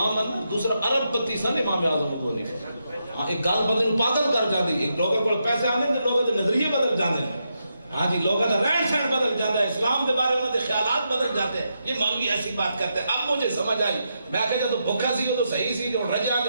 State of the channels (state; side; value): inverted; both; correlation -0.83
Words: ہیں، دوسرا عرب پتی سن امام اعظم ابو حنیفہ، ہاں ایک گل بدل پاگل کر جاندی، ایک لوگوں کو پیسے آنے تے لوگوں دے نظریے بدل جاندے، ہاں جی لوگوں کا رہن سہن بدل جاتا ہے، اسلام کے بارے میں خیالات بدل جاتے ہیں، یہ مولوی ایسی بات کرتے ہیں۔ اب مجھے سمجھ آئی، میں کہا جب بھوکا سی تو صحیح سی، جو رجے آتے